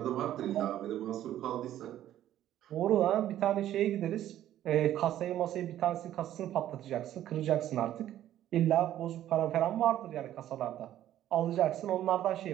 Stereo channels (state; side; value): quieter; left; 12.3 dB